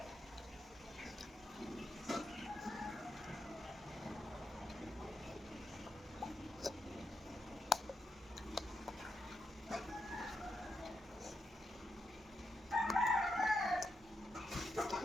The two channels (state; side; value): normal; both; correlation 0.84